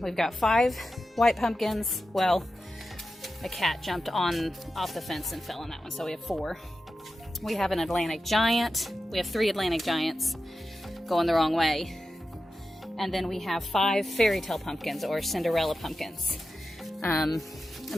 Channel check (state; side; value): normal; both; correlation 0.91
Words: We've got 5 white pumpkins. Well, a cat jumped off the fence and fell on that one, so we have 4. We have an Atlantic Giant. We have 3 Atlantic Giants going the wrong way. And then we have 5 fairy tale pumpkins, or Cinderella pumpkins. I've